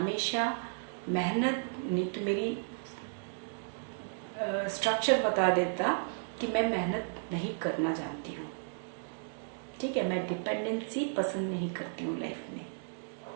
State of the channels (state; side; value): silent; left; digital silence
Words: मेहनत, नहीं तो मेरी स्ट्रक्चर बता देता कि मैं मेहनत नहीं करना जानती हूँ, ठीक है। मैं डिपेंडेंसी पसंद नहीं करती हूँ लाइफ में